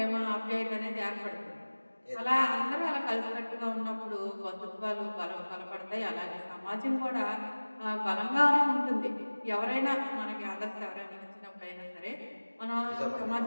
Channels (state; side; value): inverted; both; correlation -1.00